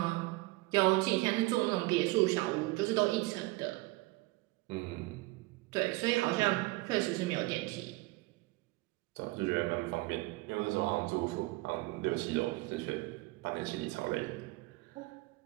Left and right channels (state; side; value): quieter; left; 21.9 dB